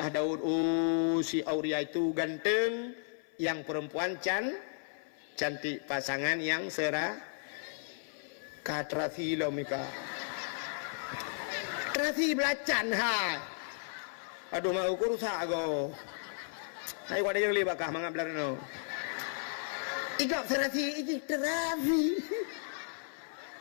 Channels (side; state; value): right; silent; 55 dB below the other